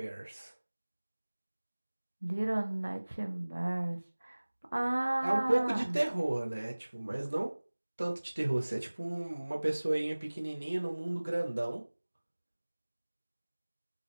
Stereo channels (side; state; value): both; inverted; correlation -1.00